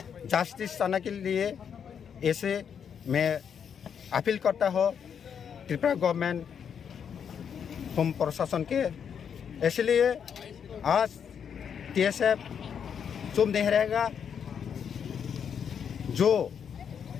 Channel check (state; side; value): quieter; right; 7.6 dB